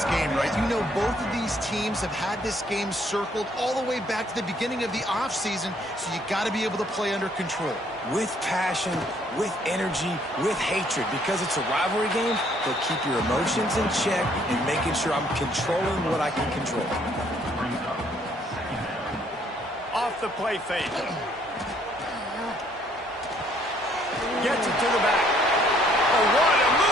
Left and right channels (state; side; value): normal; both; correlation 0.65